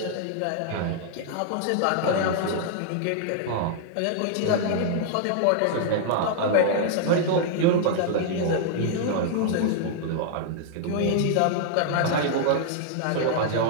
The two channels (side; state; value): both; different; correlation -0.01